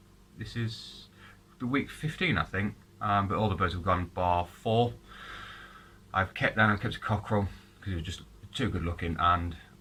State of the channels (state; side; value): identical; both; correlation 1.00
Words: This is the week 15 I think, but all the birds have gone bar 4. I've kept a cockerel because he was just too good looking and